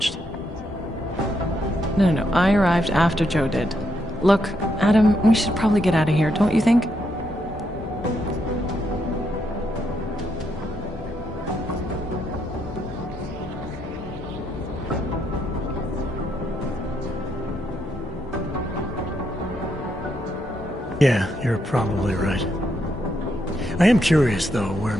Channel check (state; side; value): normal; both; correlation 0.78